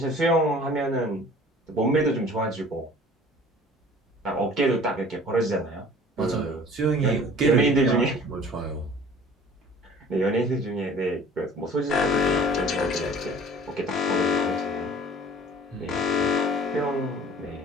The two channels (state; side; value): normal; both; correlation 0.47